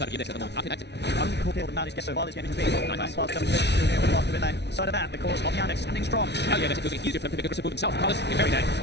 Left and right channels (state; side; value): late; right; 0.50 ms